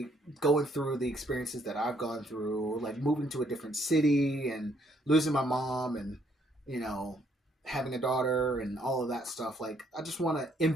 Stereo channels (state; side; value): normal; both; correlation 0.69